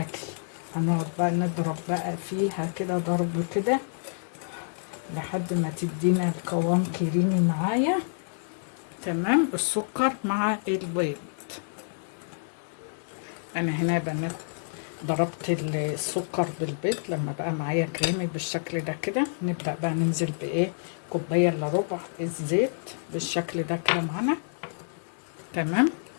هنقعد بقى نضرب بقى فيها كده ضرب كده لحد ما تدينا القوام كريمي معايا. تمام. السكر مع البيض. انا هنا يا بنات ضربت السكر بالبيض لما بقى معايا كريمي بالشكل ده كده. نبدأ بقى ننزل كوباية الا ربع الزيت بالشكل ده كده معانا. تمام.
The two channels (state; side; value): silent; right; digital silence